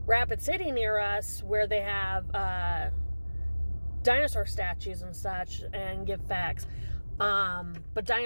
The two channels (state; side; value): inverted; both; correlation -1.00